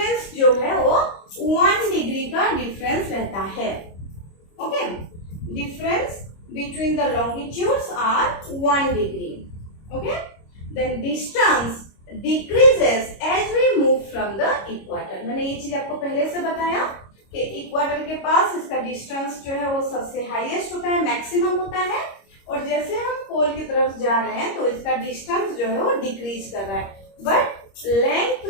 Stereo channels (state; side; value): late; right; 25 ms